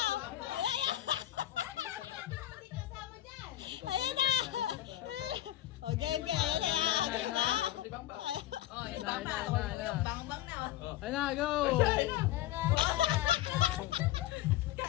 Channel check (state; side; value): quieter; right; 13.9 dB